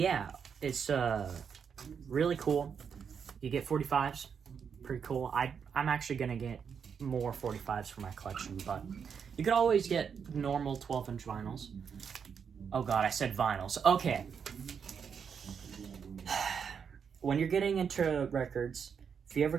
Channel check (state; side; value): quieter; left; 6.8 dB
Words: it's really cool. You get 45s, pretty cool. I'm actually gonna get more 45s for my collection, but you could always get normal 12-inch vinyls. Oh god, I said vinyls. Okay. When you're getting into records, if you ever